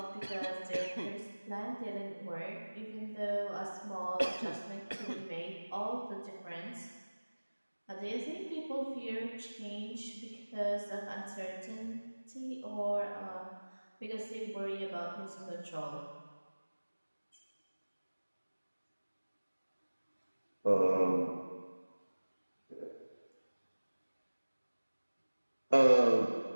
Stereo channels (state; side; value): inverted; both; correlation -1.00